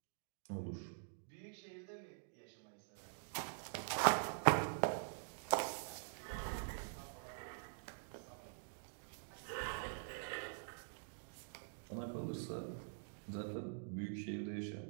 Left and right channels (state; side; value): silent; left; digital silence